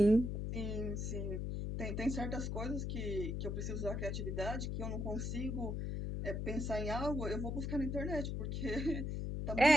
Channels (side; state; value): left; noise; hum, 2 dB below the sound